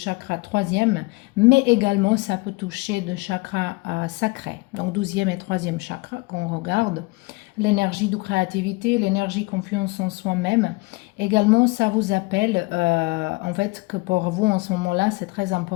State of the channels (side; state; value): right; quieter; 25.3 dB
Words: troisième, mais également ça peut toucher de chakra sacré, donc 12e et 3e chakra qu'on regarde. L'énergie de créativité, l'énergie confiance en soi-même. Également, ça vous appelle, en fait, que pour vous, en ce moment-là, c'est très